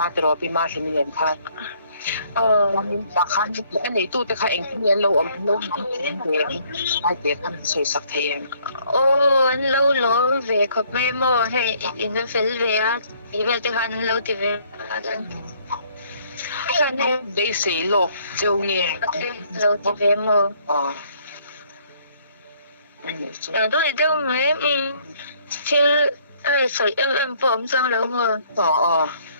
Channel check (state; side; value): inverted; both; correlation -0.63